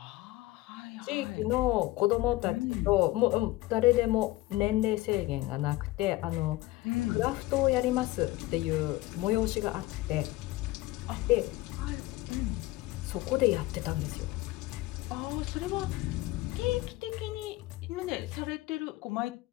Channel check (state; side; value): quieter; right; 18.4 dB